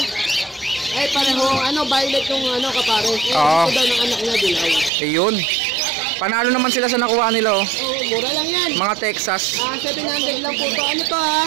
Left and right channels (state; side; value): drops out; left; at 4.9 s